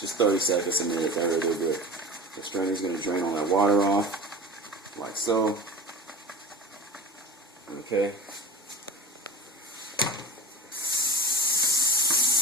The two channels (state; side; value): normal; both; correlation 0.33